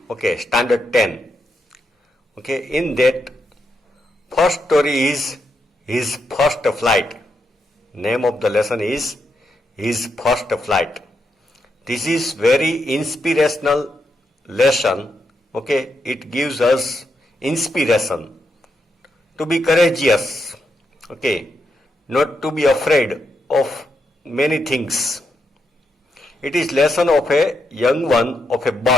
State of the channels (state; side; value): normal; both; correlation 0.82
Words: Okay, standard 10. Okay, in that first story is his first flight. Name of the lesson is his first flight. This is very inspirational lesson. Okay, it gives us inspiration to be courageous. Okay, not to be afraid of many things. It is lesson of a young one of a